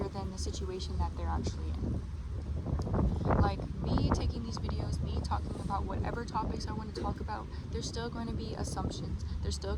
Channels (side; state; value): both; identical; correlation 1.00